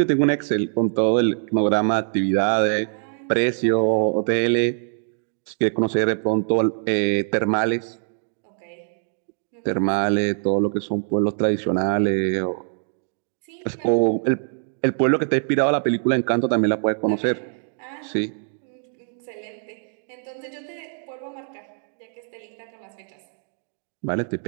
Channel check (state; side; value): silent; left; digital silence